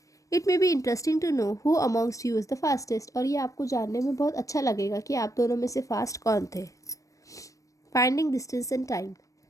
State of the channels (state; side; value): late; right; 0.16 ms